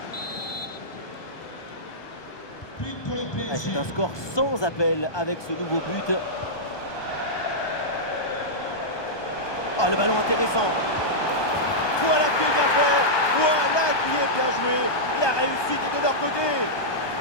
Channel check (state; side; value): late; right; 1.2 ms